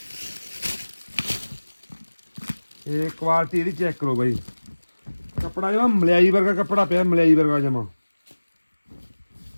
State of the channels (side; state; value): both; inverted; correlation -1.00